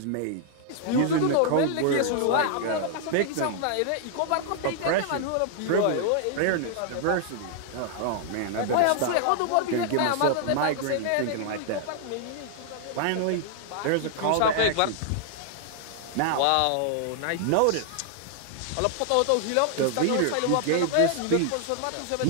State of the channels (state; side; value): different; both; correlation -0.01